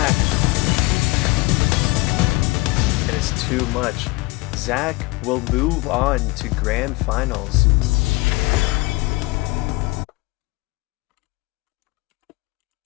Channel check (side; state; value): right; quieter; 23.0 dB